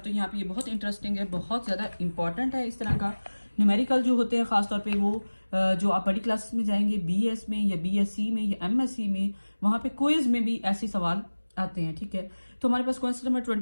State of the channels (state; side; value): inverted; both; correlation -1.00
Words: तो यहाँ पे ये बहुत इंटरेस्टिंग है, बहुत ज़्यादा इंपॉर्टेंट है। इस तरह का न्यूमेरिकल जो होते हैं ख़ासतौर पे वो जो आप बड़ी क्लासेस में जाएंगे, BS में या BSc में या MSc में, वहाँ पे क्विज में भी ऐसे सवाल आते हैं, ठीक है। तो हमारे पास क्वेश्चन नंबर